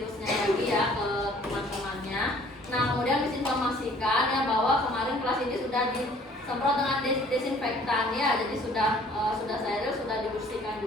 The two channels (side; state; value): both; normal; correlation 0.56